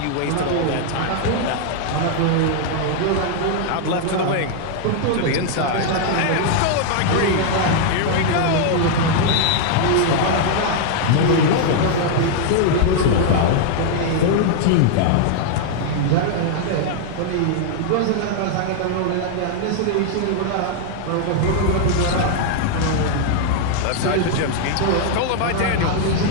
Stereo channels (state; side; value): different; both; correlation 0.00